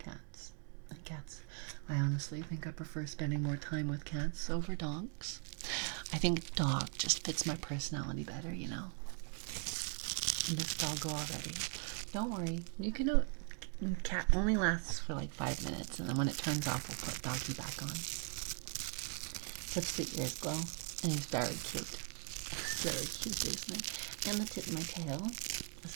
Cats, I honestly think I prefer spending more time with cats over dogs. I think dog just fits my personality better, you know. And this doggo already. Don't worry, you can do. Cat only lasts for like 5 minutes, and then when it turns off, we'll put doggy back on. Tips the ears glow, and he's very cute. It's very cute, isn't it? And the tip of my tail is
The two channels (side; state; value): left; quieter; 39.7 dB